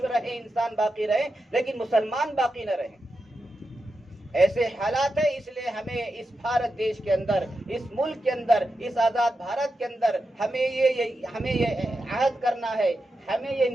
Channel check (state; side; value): normal; both; correlation 0.89